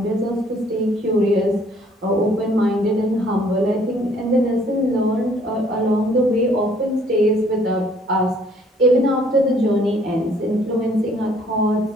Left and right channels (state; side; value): normal; both; correlation 0.61